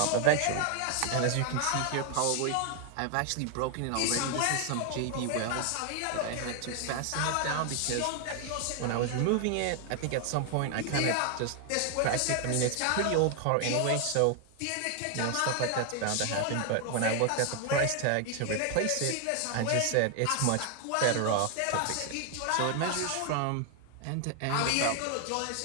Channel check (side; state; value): both; different; correlation 0.00